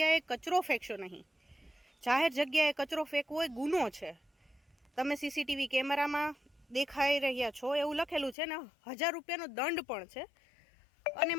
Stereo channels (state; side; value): drops out; right; at 8.3 s